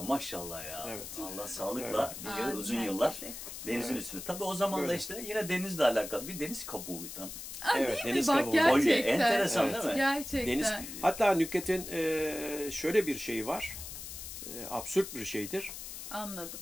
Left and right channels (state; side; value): noise; left; hiss, 10 dB below the sound